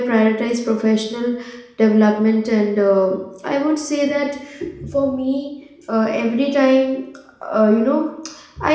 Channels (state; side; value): identical; both; correlation 1.00